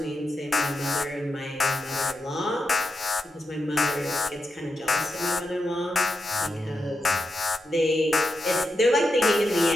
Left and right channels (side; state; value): both; normal; correlation 0.88